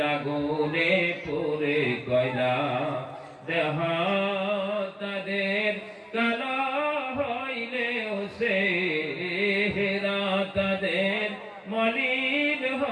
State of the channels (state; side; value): identical; both; correlation 1.00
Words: আগুনে পুরে কয়লা। দেহ তাদের কালা হইলেও সে হেরা, তাদের মলিন